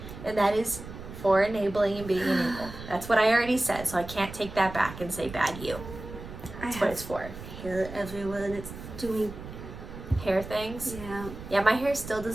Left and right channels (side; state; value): right; noise; rumble, 12 dB below the sound